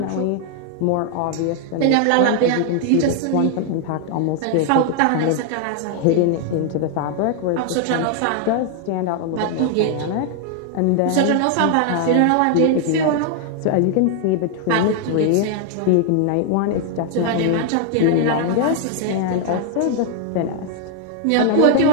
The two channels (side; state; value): both; different; correlation 0.00